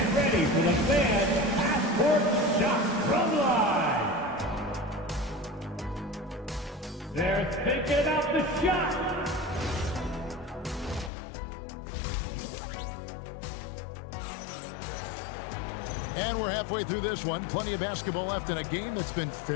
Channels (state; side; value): drops out; right; at 11.1 s